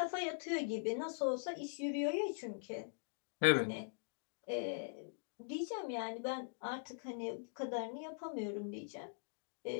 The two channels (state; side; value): silent; right; digital silence